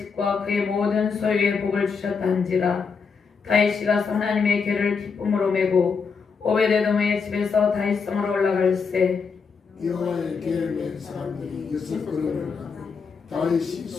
그의 모든 소유에 복을 주셨다 한지라. 다윗이 가서 하나님의 궤를 기쁨으로 메고 오베데돔의 집에서 다윗성으로 올라갈새 여호와의 궤를 맨 사람들이 6걸음을 가며 다윗이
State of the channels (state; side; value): quieter; right; 5.5 dB